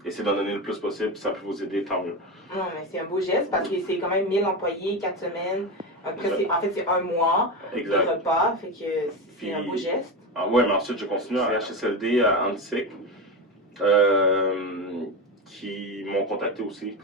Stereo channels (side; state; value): both; normal; correlation 0.19